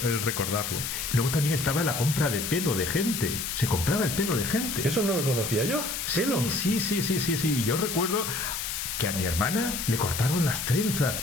recordarlo. Luego también estaba la compra de pelo de gente, se compraba el pelo de gente. Eso no lo conocía yo. ¿Pelo? Sí. Yo recuerdo que a mi hermana le cortaron las trenzas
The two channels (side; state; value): left; noise; hiss, 4 dB below the sound